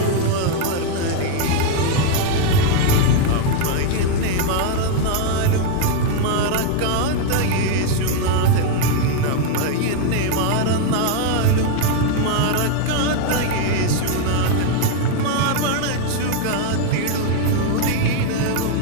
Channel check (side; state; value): both; different; correlation 0.01